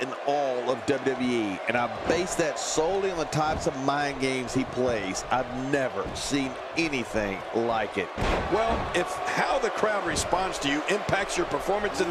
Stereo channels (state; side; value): identical; both; correlation 1.00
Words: all of WWE, and I base that solely on the types of mind games he plays. I've never seen anything like it. Well, if how the crowd responds to you impacts your performance in